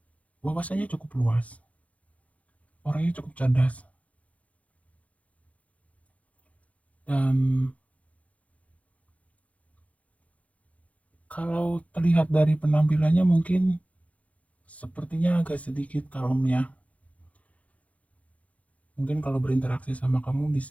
wawasannya cukup luas, orangnya cukup cerdas, dan kalau terlihat dari penampilannya mungkin sepertinya agak sedikit kalem ya. Mungkin kalau berinteraksi sama kamu di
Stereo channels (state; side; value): late; right; 0.066 ms